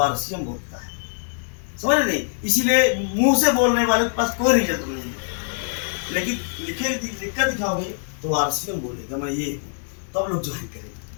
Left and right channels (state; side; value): silent; right; 63 dB below the other